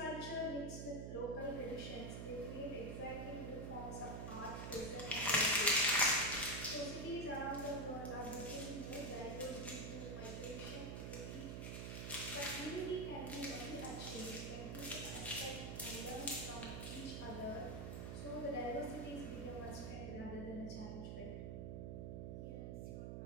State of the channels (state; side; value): noise; right; hum, 4 dB below the sound